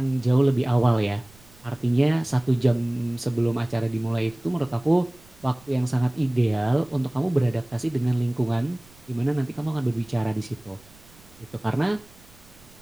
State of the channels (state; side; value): noise; right; rumble, 26 dB below the sound